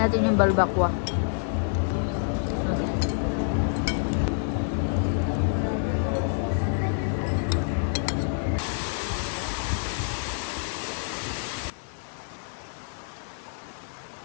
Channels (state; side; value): silent; right; digital silence